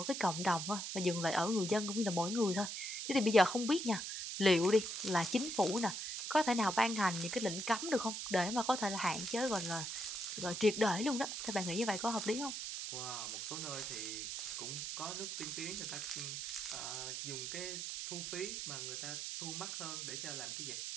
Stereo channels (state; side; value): noise; right; hiss, 4 dB below the sound